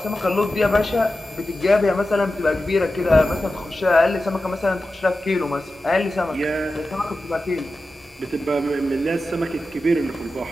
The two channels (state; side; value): normal; both; correlation 0.93